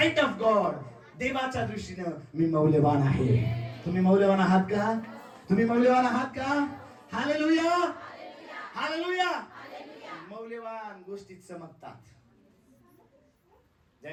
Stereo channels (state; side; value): identical; both; correlation 1.00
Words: of God, देवाच्या दृष्टीनं मी मौल्यवान आहे. तुम्ही मौल्यवान आहात का? तुम्ही मौल्यवान आहात का? हालेलुया. हालेलुया. मौल्यवान गोष्टीत चमकतात.